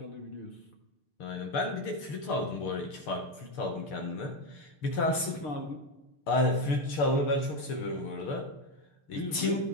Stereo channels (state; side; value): late; right; 6.6 ms